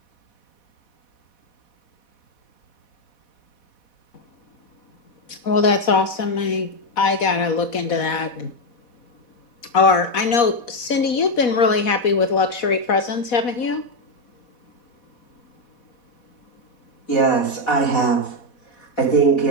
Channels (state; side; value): late; right; 4.1 ms